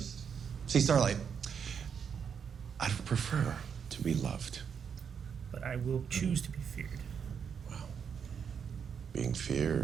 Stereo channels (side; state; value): left; quieter; 7.1 dB